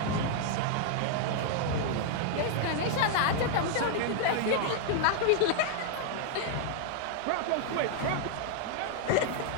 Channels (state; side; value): different; both; correlation 0.00